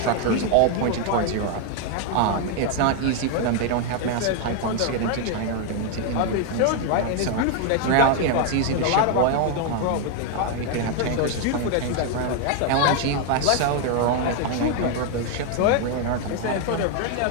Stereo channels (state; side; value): different; both; correlation 0.00